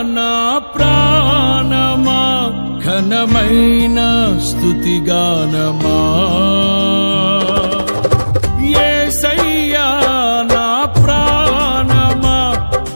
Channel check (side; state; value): both; inverted; correlation -1.00